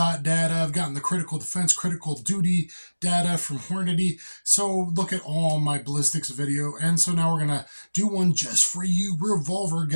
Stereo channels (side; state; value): both; inverted; correlation -1.00